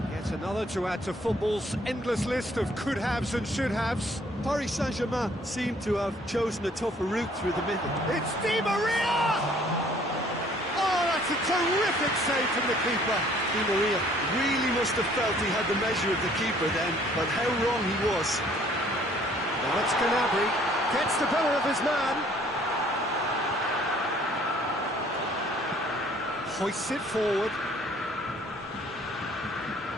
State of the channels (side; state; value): both; normal; correlation 0.59